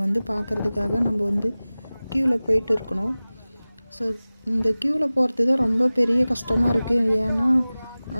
வந்து பார்க்குறதுக்காக நம்ம வந்து க்யூவில் போயிட்டு இருக்கணும். ஸோ இந்த க்யூவில் போகிறது தான் ரொம்ப பெரிய கஷ்டமாக இருக்குது. ஏன்னா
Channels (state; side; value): inverted; both; correlation -0.98